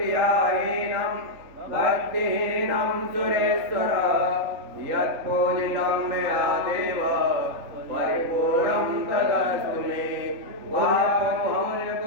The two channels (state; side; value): late; left; 3.8 ms